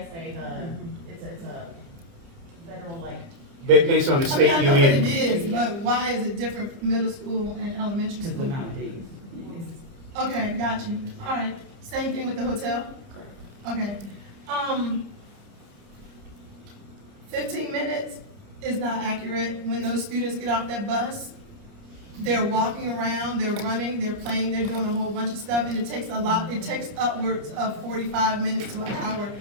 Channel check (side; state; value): left; late; 29 ms